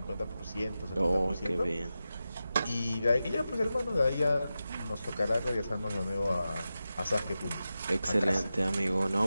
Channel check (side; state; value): both; inverted; correlation -0.92